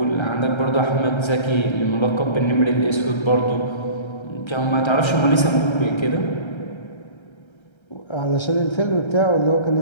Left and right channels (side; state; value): right; late; 1.3 ms